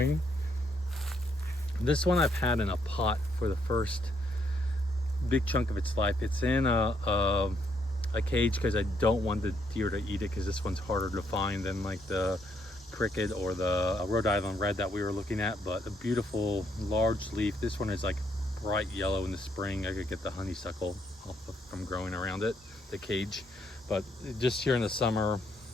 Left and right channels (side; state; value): both; normal; correlation 0.73